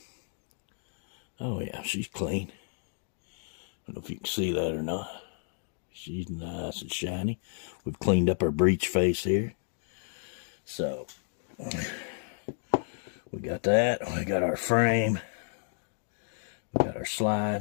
Oh yeah, she's clean. I don't know if you can see that or not. She's nice and shiny. We've cleaned up our breech face here. So, we got that. We got our frame. We got our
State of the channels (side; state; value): right; silent; digital silence